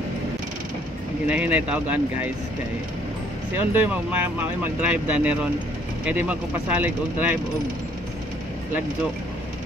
ginahinay taogan guys kay si Ondoy mag-drive da neron kaya di magkupasalig og drive og lagjo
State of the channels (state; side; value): normal; both; correlation 0.63